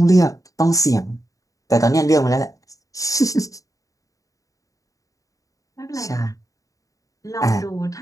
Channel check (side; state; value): right; late; 0.16 ms